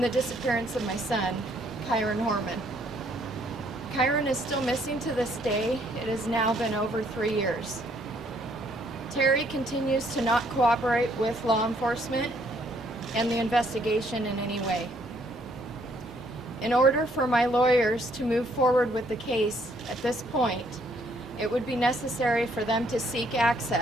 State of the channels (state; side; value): normal; both; correlation 0.67